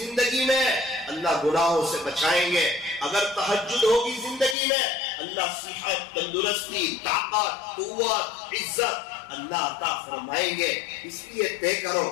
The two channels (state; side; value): drops out; right; at 4.5 s